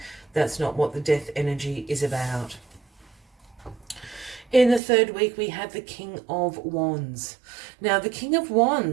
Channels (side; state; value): left; drops out; at 4.8 s